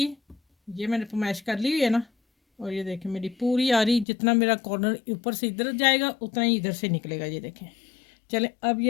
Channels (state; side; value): drops out; right; at 4.0 s